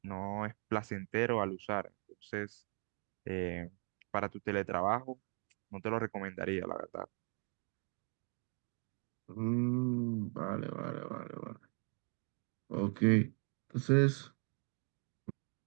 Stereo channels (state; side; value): quieter; left; 39.9 dB